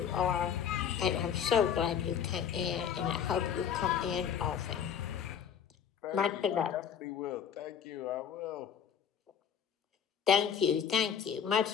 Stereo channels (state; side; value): quieter; right; 8.2 dB